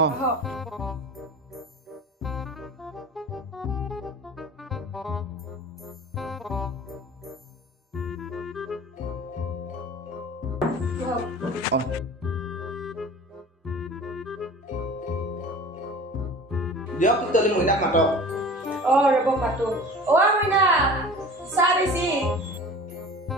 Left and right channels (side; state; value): both; normal; correlation 0.40